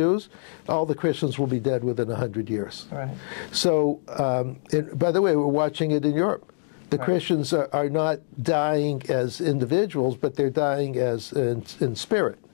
all the Christians will be dead within 100 years. Right. So, by the way, we're watching it in Europe. The Right. Christians are not dying as individuals, but they're dying as in spirit.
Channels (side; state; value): right; silent; digital silence